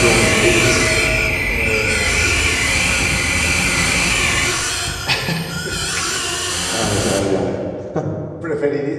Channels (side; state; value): both; identical; correlation 1.00